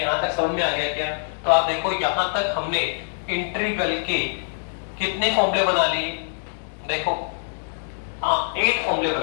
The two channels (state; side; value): silent; right; digital silence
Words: तक समझ में आ गया क्या। तो आप देखो यहां तक हमने इंटीग्रल के कितने फॉर्मूले बना लिए, देखो 8 फॉर्मूले